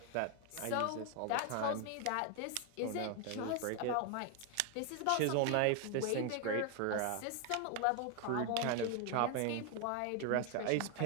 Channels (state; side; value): different; both; correlation 0.01